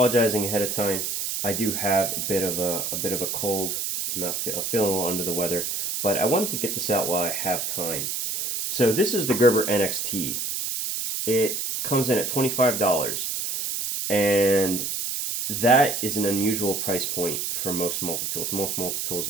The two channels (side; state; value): right; noise; hiss, 2 dB below the sound